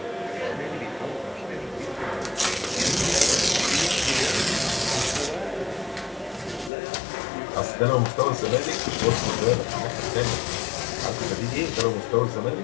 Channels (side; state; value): right; drops out; at 6.7 s